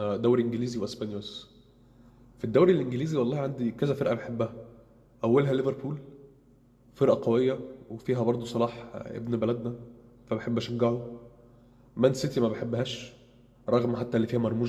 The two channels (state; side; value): identical; both; correlation 1.00